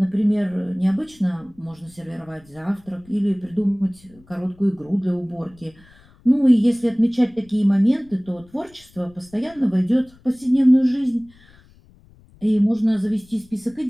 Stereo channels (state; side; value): noise; left; rumble, 27 dB below the sound